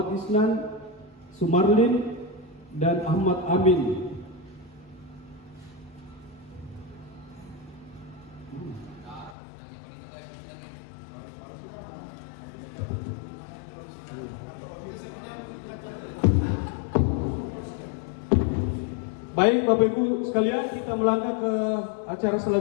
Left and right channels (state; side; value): drops out; right; at 9.3 s